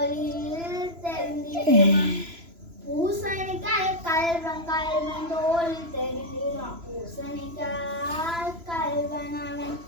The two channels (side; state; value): left; late; 3.0 ms